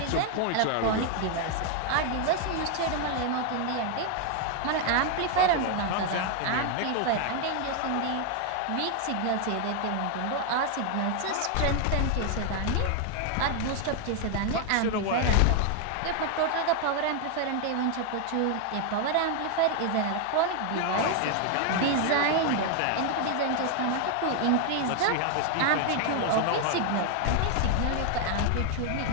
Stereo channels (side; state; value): both; different; correlation 0.00